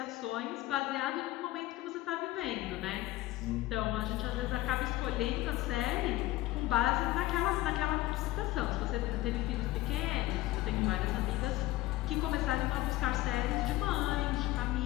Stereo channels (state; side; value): quieter; right; 16.8 dB